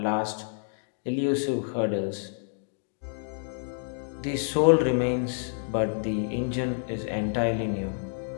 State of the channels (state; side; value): silent; right; digital silence